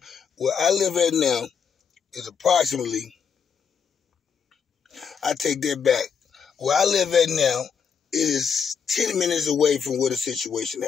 I live at now is approximately, I take that back. Where I live at now, it is 10 minutes away from where the situation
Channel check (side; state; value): right; quieter; 6.7 dB